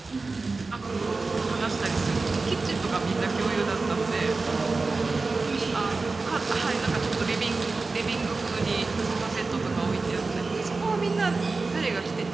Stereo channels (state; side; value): quieter; left; 3.8 dB